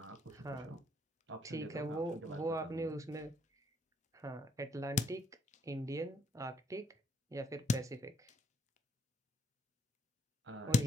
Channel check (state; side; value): normal; both; correlation 0.69